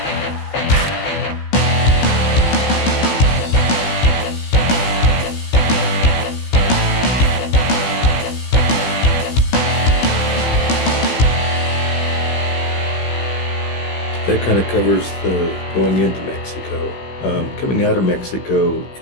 That kind of covers the going into Mexico. Coming out of Mexico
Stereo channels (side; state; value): right; late; 16 ms